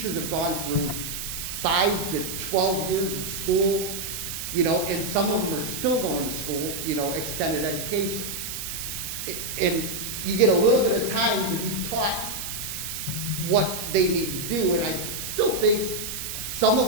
have gone through 5 to 12 years of school, you know, and some of them are still going to school, you know, extended education. And you get a little bit of time to be taught what they need to do, and I still think some of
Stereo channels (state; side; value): noise; right; hiss, 6 dB below the sound